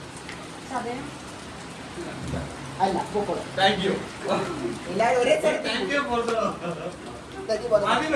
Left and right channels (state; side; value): identical; both; correlation 1.00